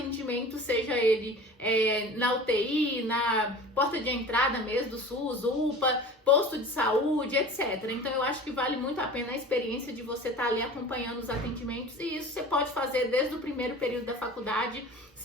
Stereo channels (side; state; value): both; normal; correlation 0.39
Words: seja ele na UTI, na porta de entrada mesmo do SUS, UPA, posto de saúde, etc. Então eu acho que vale muito a pena a experiência de você estar ali acompanhando os atendimentos, e isso você pode fazer desde o primeiro período da faculdade,